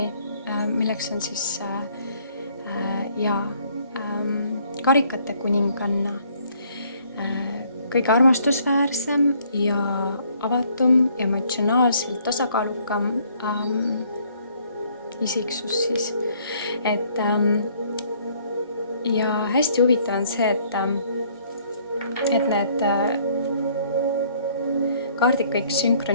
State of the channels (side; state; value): both; inverted; correlation -0.63